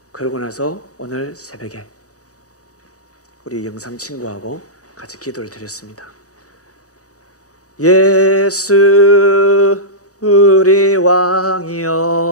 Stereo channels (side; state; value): right; late; 0.66 ms